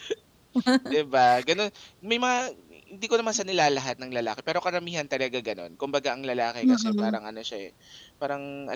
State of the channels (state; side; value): identical; both; correlation 1.00